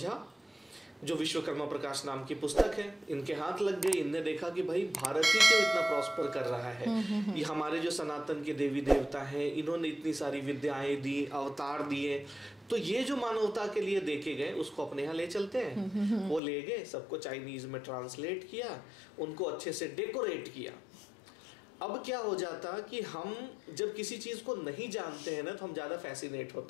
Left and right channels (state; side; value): drops out; right; at 16.4 s